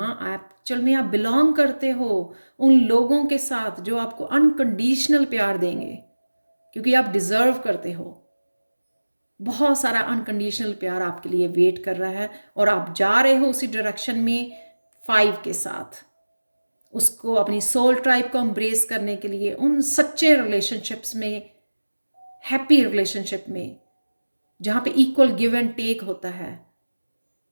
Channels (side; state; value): both; inverted; correlation -1.00